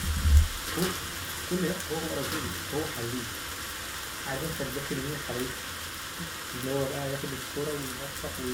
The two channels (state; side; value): identical; both; correlation 1.00